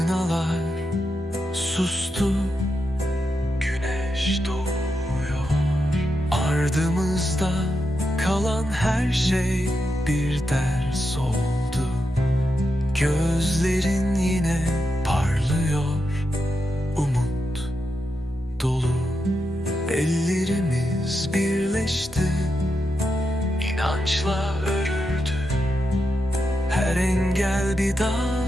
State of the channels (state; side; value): normal; both; correlation 0.86